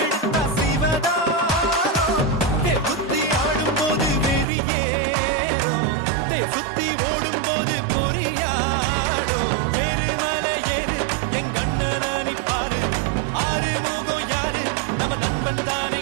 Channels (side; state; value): left; drops out; at 4.5 s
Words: சிவதாரம். புத்தி ஆடும்போது வெறியேறும். சுத்தி ஓடும்போது பொறியாடும். எரிமலை ஏறு என் கண்ணனை பாரு. ஆறு முகம் யாரு நம்ம நண்பன்